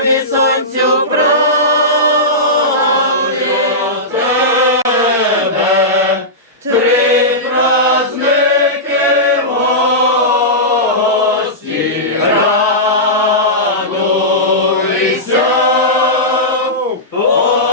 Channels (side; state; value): both; normal; correlation -0.14